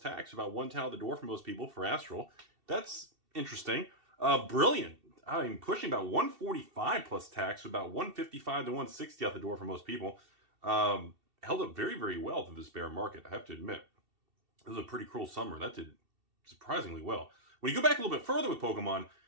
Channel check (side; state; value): left; late; 2.7 ms